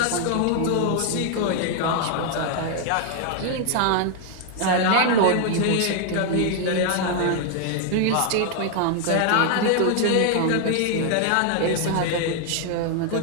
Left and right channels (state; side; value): different; both; correlation 0.00